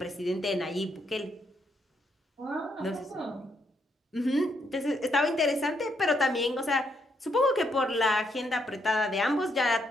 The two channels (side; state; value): both; normal; correlation 0.75